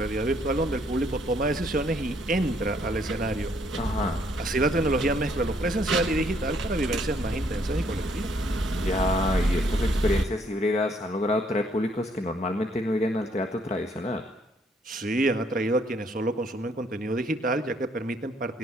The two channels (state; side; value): normal; both; correlation 0.67